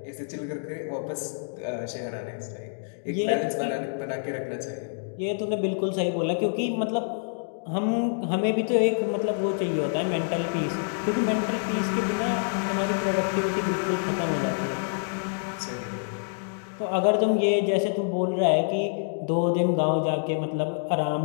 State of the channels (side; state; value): right; silent; digital silence